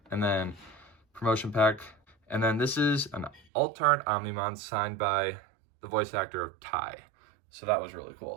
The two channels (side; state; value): left; drops out; at 3.4 s